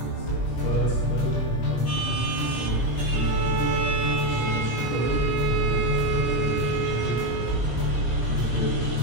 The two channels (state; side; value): late; right; 17 ms